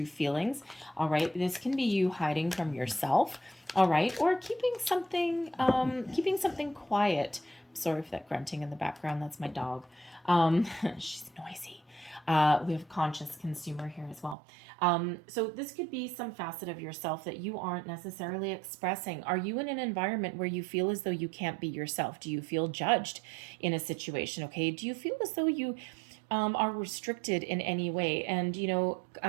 feelings. All right. This can be you hiding from yourself. All right. Or keeping something quiet. Sorry for that grunting in the background. That's my dog. She's noisy. We have conscious consumer here as well. So this could be some facet of yourself that you aren't necessarily expressing. Are you in an environment where you feel as though you can't be yourself? Do you feel judged in a situation? Okay. Do you feel as though you are restricted in any way? And,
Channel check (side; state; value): left; drops out; at 14.4 s